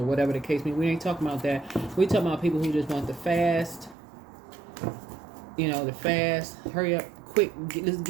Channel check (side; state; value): left; drops out; at 4.0 s